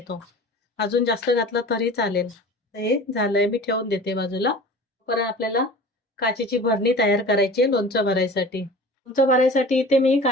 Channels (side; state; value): both; normal; correlation 0.40